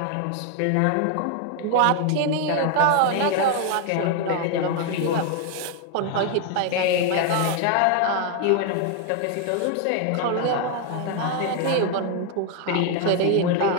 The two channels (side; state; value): both; different; correlation 0.00